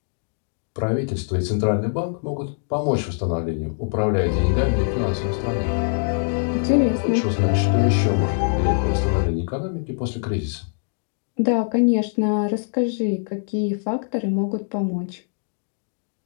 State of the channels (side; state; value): right; silent; digital silence